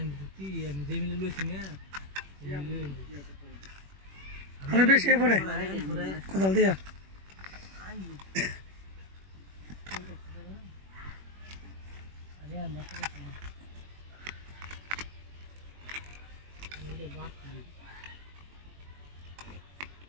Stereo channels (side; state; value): left; late; 21 ms